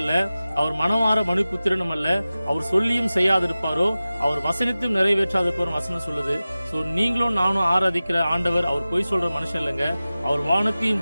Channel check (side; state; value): both; inverted; correlation -0.96